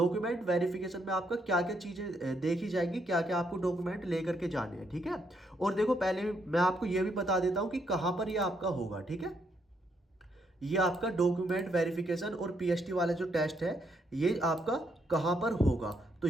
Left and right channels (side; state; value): both; normal; correlation 0.75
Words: वेरिफिकेशन में आपका क्या क्या चीजें देखी जाएंगी, क्या क्या आपको डॉक्यूमेंट लेकर के जाने हैं, ठीक है। और देखो पहले मैं आपको यह भी बता देता हूं कि कहां पर यह आपका होगा, ठीक है। ये आपका डॉक्यूमेंट वेरिफिकेशन और पीएसटी वाला जो टेस्ट है ये आपका कहां पर होगा। तो